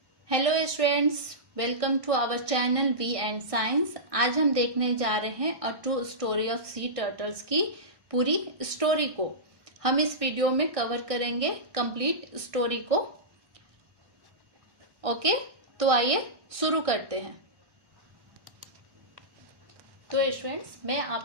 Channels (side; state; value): left; late; 1.6 ms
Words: Hello students, welcome to our channel V and science. आज हम देखने जा रहे हैं a true story of sea turtles की पूरी स्टोरी को। हम इस वीडियो में कवर करेंगे कंप्लीट स्टोरी को। ओके, तो आइए शुरू करते हैं। तो स्टूडेंट्स, मैं